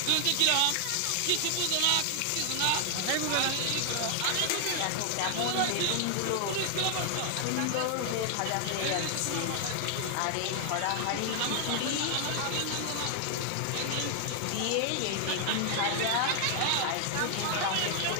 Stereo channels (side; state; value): both; different; correlation 0.00